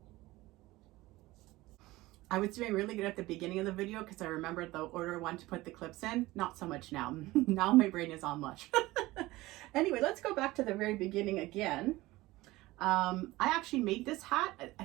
I was doing really good at the beginning of the video because I remembered the order I wanted to put the clips in. Not so much now. Now my brain is on mush. Anyway, let's go back to the very beginning again. I actually made this hat, I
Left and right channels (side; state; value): left; quieter; 18.9 dB